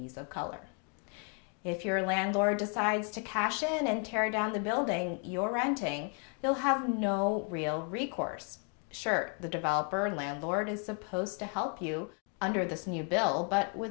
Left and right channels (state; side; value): quieter; right; 39.8 dB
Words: of color. If your landlord decides to cash in and tear down the building you're renting, you'll have no real recourse. Sure, the developer and landlord is supposed to help you under this new bill, but